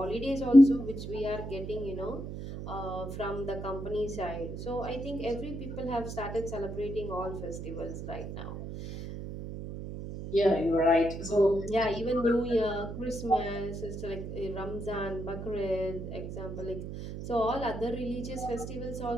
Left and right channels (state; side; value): noise; right; hum, 7 dB below the sound